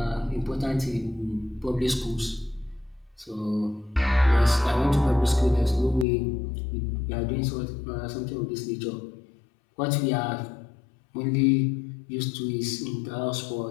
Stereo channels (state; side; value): drops out; right; at 6.1 s